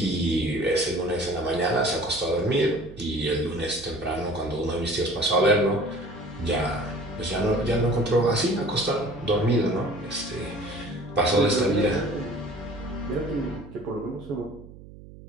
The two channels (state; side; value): noise; right; hum, 18 dB below the sound